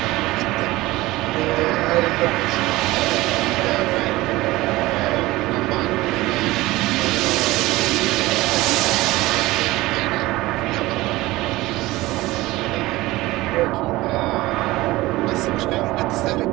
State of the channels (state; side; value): quieter; left; 19.0 dB